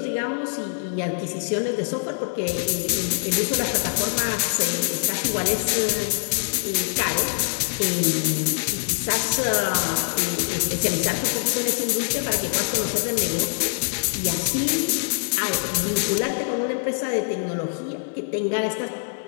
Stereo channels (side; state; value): right; silent; digital silence